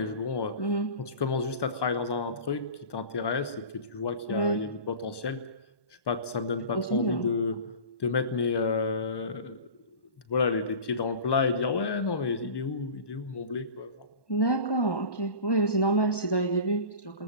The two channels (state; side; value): late; right; 1.1 ms